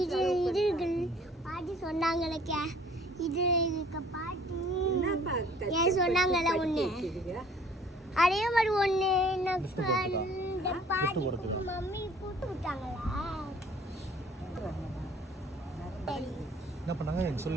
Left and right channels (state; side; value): normal; both; correlation 0.55